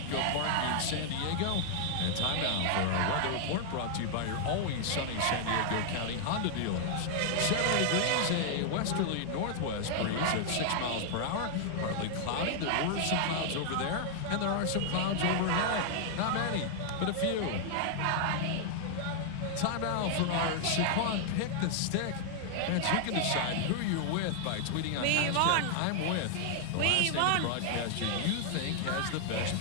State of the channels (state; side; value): different; both; correlation -0.01